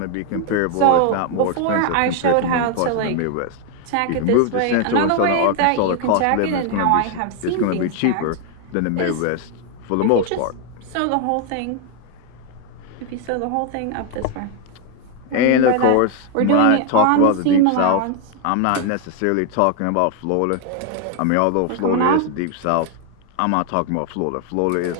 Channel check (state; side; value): different; both; correlation 0.00